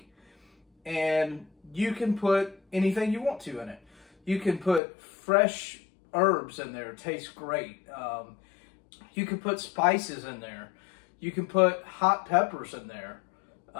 and you can put anything you want to in it. You can put fresh herbs in there, it tastes great. You can put spices in there. You can put hot peppers in there.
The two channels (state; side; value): drops out; right; at 4.8 s